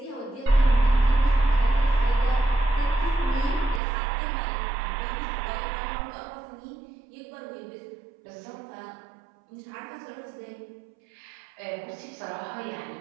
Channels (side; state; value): left; drops out; at 3.8 s